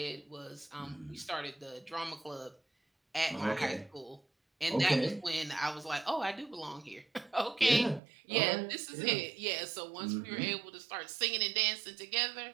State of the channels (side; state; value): left; drops out; at 8.0 s